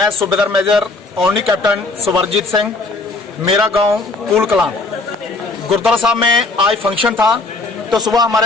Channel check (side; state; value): right; quieter; 3.4 dB